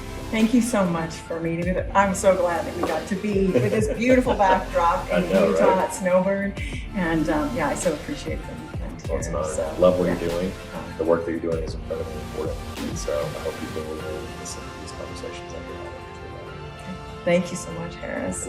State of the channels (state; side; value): identical; both; correlation 1.00